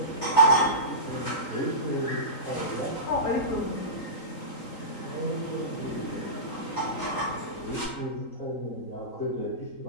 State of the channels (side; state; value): right; late; 3.9 ms